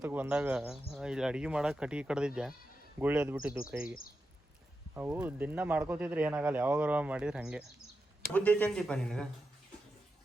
ಬಂದಾಗ ಇಲ್ಲಿ ಅಡುಗೆ ಮಾಡೋಕೆ ಕಟ್ಟಿಗೆ ಕಡ್ದಿದ್ದೆ, ಗುಳ್ಳಿ ಎದ್ದು ಬಿಟ್ಟಿದ್ದು ಕೈಗೆ. ಅವು ದಿನ ಮಾಡ್ಕೋತಿದ್ರೆ ಏನಾಗಲ್ಲ, ಯಾವಾಗಾರ ಮಾಡಿದ್ರೆ ಹಾಗೆ. ಬುದ್ಧಿ ಐತೆ ಅಂತೀಪ ನಿನಗೆ?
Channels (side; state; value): both; normal; correlation 0.89